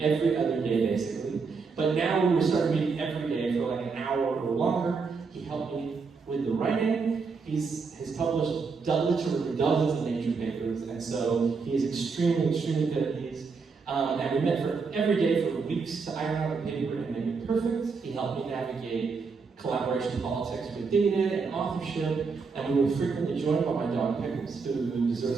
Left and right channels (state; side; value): quieter; left; 4.9 dB